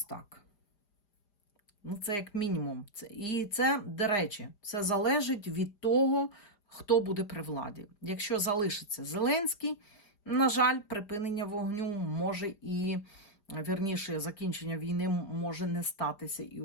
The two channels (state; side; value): late; right; 4.9 ms